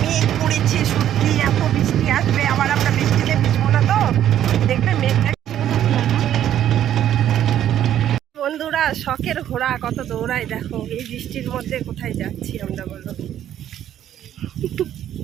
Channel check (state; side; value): quieter; left; 11.1 dB